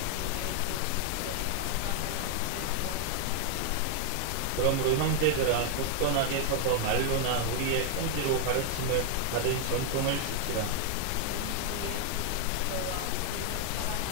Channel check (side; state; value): both; different; correlation 0.00